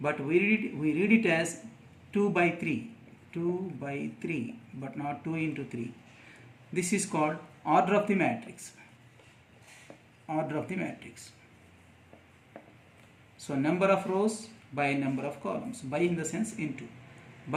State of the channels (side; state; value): both; identical; correlation 1.00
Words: we read it as 2 by 3. 2 by 3, but not 2 into 3. This is called order of the matrix. So number of rows by number of columns. By in the sense into.